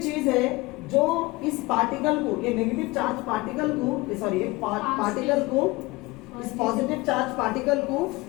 चीज है जो इस पार्टिकल को, ये नेगेटिव चार्ज पार्टिकल को, सॉरी पार्टिकल को, इस पॉजिटिव चार्ज पार्टिकल को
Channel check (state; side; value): quieter; right; 21.9 dB